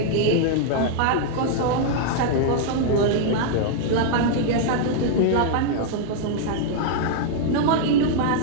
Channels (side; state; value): both; different; correlation -0.01